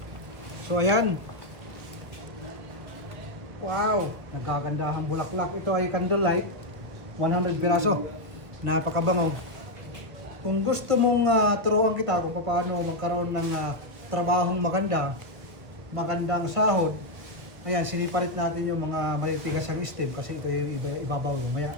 So ayan. Wow, nagkagandahang bulaklak. Ito ay candlelight, 100 piraso. Napakabango. Kung gusto mong turuan kita kung paano magkaroon ng trabahong magandang sahod, ayan, sinipalit natin yung mga malitigas ang stem kasi ito yung ibabaw lumaya.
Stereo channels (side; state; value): left; late; 1.5 ms